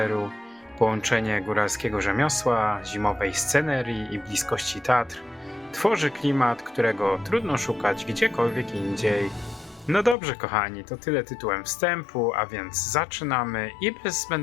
Połączenie góralskiego rzemiosła, zimowej scenerii i bliskości Tatr tworzy klimat, którego trudno szukać gdziekolwiek indziej. No dobrze kochani, to tyle tytułem wstępu, a więc zaczynamy i bez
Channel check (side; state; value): right; drops out; at 10.2 s